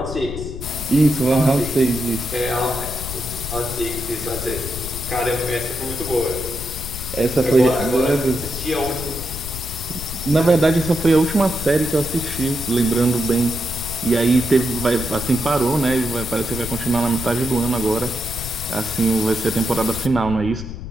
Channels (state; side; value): noise; left; rumble, 9 dB below the sound